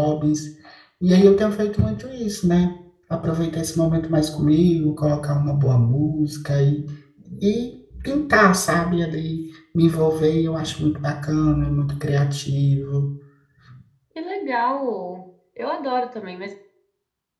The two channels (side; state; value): both; identical; correlation 1.00